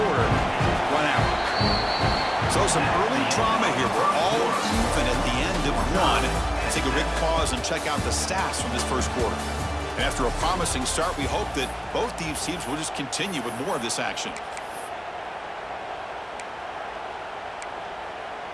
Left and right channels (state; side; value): identical; both; correlation 1.00